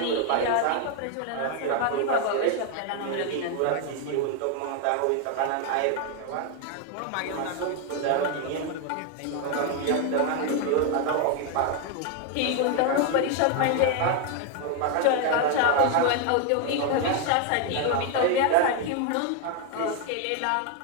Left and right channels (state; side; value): different; both; correlation 0.01